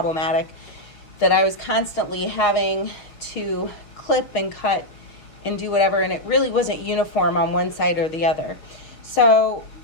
that I was constantly having to clip and cut and do whatever, and it really wasn't uniform on one side or the other. So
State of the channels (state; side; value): late; right; 6.5 ms